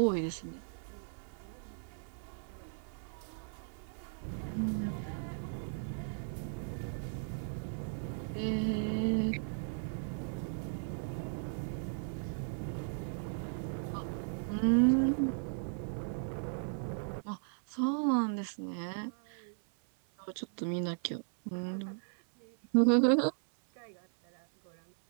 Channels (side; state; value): left; silent; 53 dB below the other